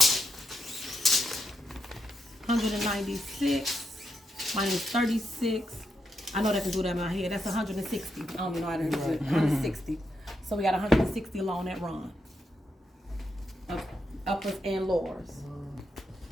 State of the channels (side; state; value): both; normal; correlation 0.82